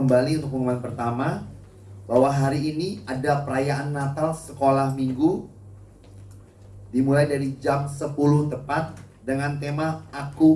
untuk pengumuman pertama bahwa hari ini ada perayaan Natal sekolah minggu dimulai dari jam 10 tepat dengan tema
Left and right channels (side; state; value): both; identical; correlation 1.00